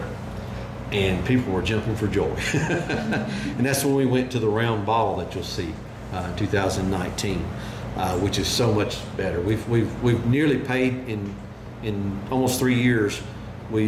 and people were jumping for joy. And that's when we went to the round ball that you'll see in 2019, which is so much better. We've nearly paid in almost 3 years.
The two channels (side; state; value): both; identical; correlation 1.00